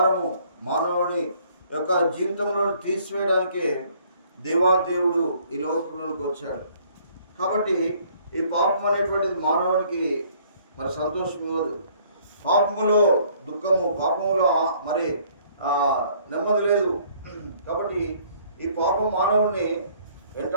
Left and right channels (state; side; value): inverted; both; correlation -0.60